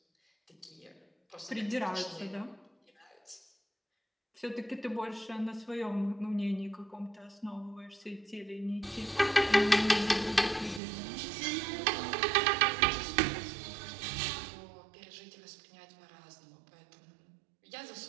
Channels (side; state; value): left; drops out; at 10.8 s